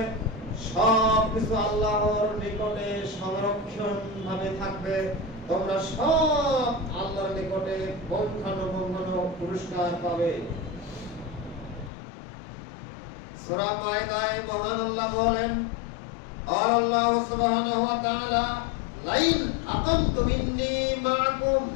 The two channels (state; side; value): drops out; right; at 11.9 s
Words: সব কিছু আল্লাহর নিকটে সংরক্ষণ ভাবে থাকবে। তোমরা সব আল্লাহর নিকটে পৌঁছানো পুরস্কার পাবে। সূরা মায়েদায় মহান আল্লাহ বলেন, আল্লাহ সুবহানাহু ওয়া তাআলা লাইন আকামতুম ইন্নী মাআকুম,